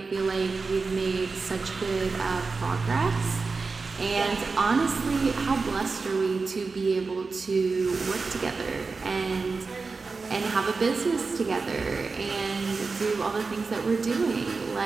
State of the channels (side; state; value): left; quieter; 4.3 dB